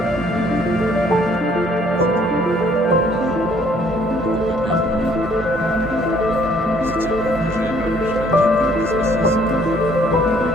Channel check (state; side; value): normal; both; correlation 0.62